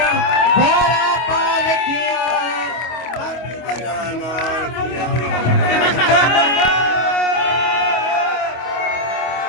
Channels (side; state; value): right; late; 25 ms